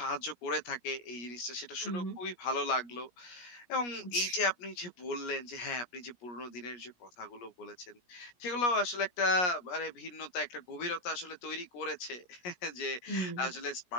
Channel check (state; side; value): late; right; 17 ms